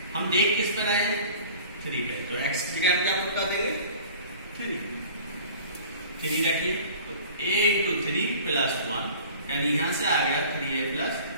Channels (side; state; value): both; inverted; correlation -0.44